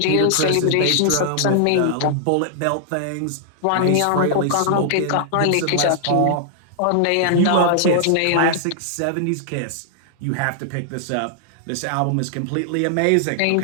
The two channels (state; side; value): different; both; correlation -0.01